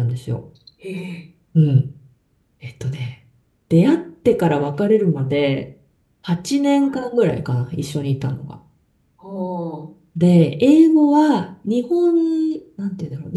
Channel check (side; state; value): both; identical; correlation 1.00